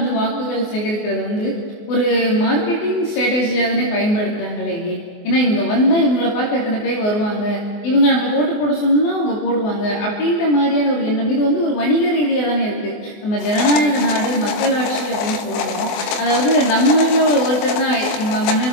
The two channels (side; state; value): right; late; 24 ms